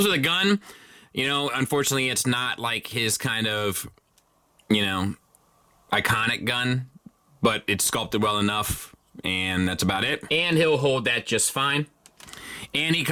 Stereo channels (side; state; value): both; identical; correlation 1.00